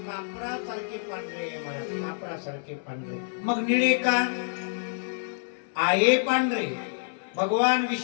कापरासारखे पांढरे, कापरासारखे पांढरे. मग निळे का आहे? पांढरे. भगवान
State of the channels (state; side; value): silent; right; 60 dB below the other